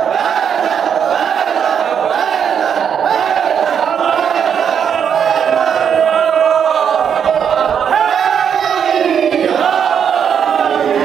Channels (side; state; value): left; quieter; 7.9 dB